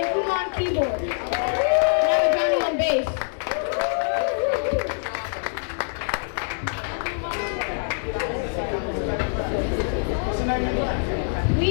CUMBO on keyboard. And I have Johnny on bass. We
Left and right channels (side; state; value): right; silent; 62 dB below the other